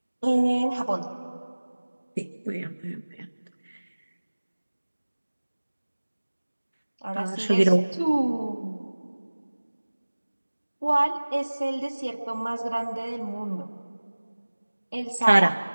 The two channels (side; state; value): both; inverted; correlation -1.00